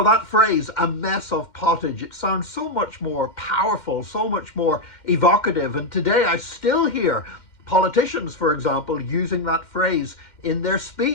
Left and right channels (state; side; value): late; right; 2.1 ms